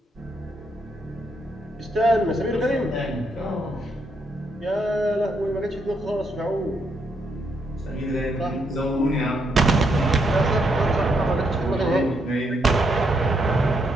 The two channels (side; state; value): both; normal; correlation 0.77